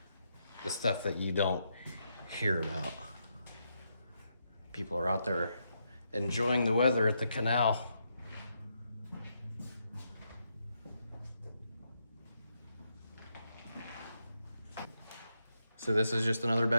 The stuff that you don't hear about. People are out there enjoying the weather at the canal. So this is just another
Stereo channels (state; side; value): inverted; both; correlation -0.81